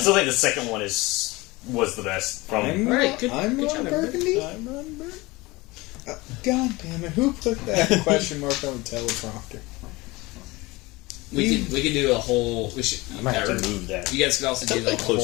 think the second one was the best. I'm Ron Burgundy. I'm Ron Burgundy. God damn it! Who put that question mark on the teleprompter? We could do a whole. We should. I might have to move that. You guys could also do like a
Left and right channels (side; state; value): right; quieter; 22.2 dB